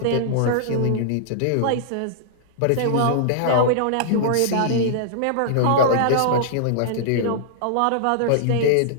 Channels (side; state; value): both; different; correlation -0.02